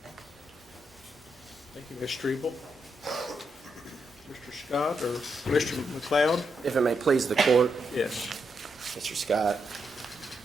Thank you, Ms. Strebel. Mr. Scott or Mr. McLeod? If it may please the court, Yes. Mr. Scott,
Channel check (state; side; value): normal; both; correlation 0.82